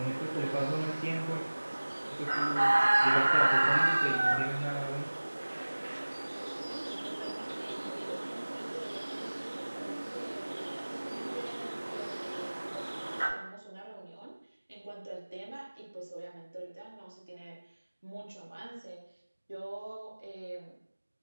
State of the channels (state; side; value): inverted; both; correlation -1.00